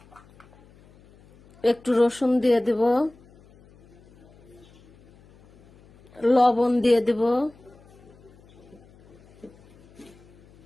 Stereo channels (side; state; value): left; noise; hum, 27 dB below the sound